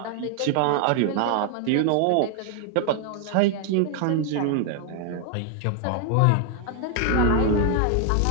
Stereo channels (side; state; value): both; different; correlation 0.00